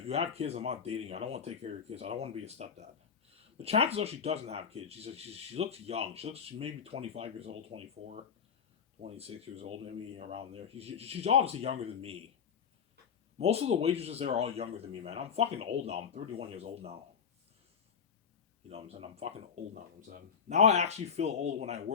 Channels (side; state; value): right; quieter; 6.9 dB